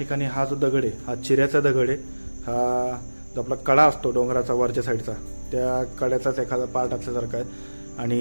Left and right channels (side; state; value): both; inverted; correlation -1.00